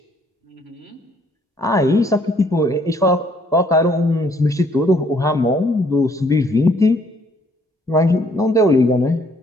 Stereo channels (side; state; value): both; normal; correlation 0.65